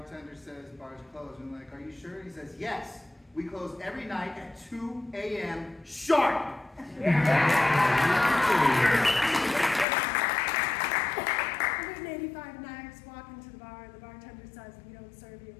says bar's closed. And like, are you sure? He says, yes. We close every night at 2 a.m. sharp. 185 knives walk into the bar. The bartender says, we don't serve you.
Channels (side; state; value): right; drops out; at 9.9 s